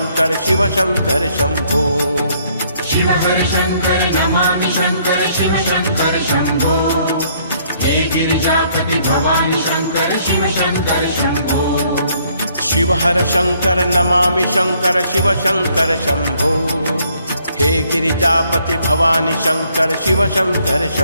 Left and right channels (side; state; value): both; inverted; correlation -0.66